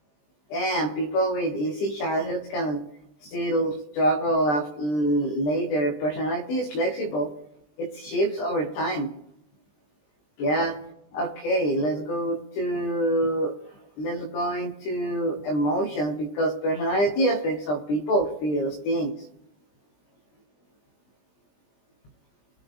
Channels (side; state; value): right; late; 20 ms